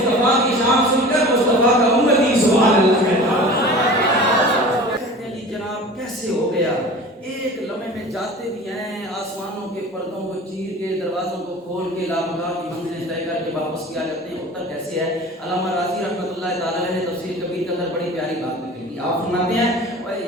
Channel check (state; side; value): normal; both; correlation 0.39